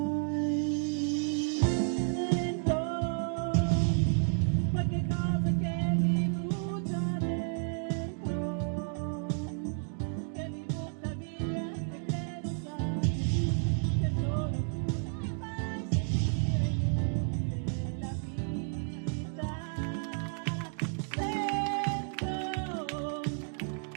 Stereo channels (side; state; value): left; silent; 55 dB below the other